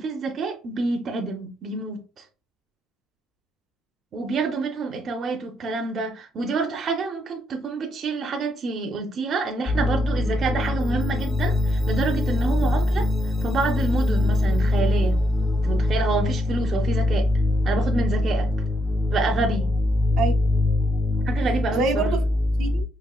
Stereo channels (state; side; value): normal; both; correlation 0.78